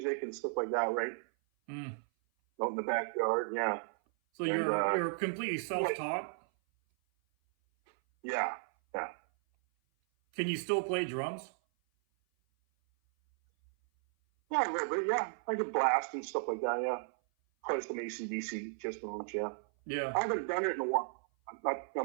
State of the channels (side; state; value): left; silent; 55 dB below the other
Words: and stuff like that, right? Mm. Out in the backyard, yeah. So you're completely self-taught? Yeah. Can you still play drums? Yeah, a little bit, yeah. I could blast and stuff like that, yeah. Play some AC/DC, Kiss songs, yeah. Yeah. I haven't done it in a while.